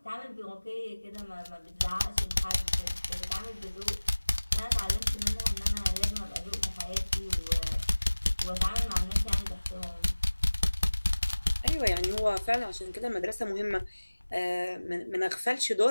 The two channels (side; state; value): both; inverted; correlation -1.00